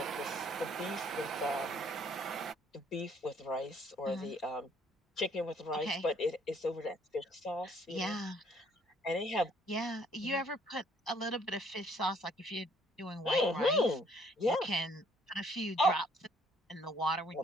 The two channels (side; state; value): both; normal; correlation 0.63